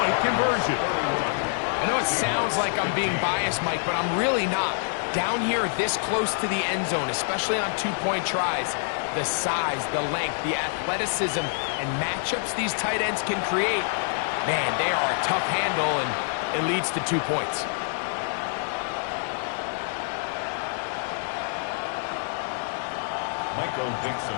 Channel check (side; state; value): right; silent; digital silence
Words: conversion. I know it sounds like I'm being biased, Mike, but I'm really not. Down here this close to the end zone, especially on 2-point tries, the size, the length, the athleticism, and matchups these tight ends can create, man, they are a tough handle, and it leads to 2 points. Michael Dixon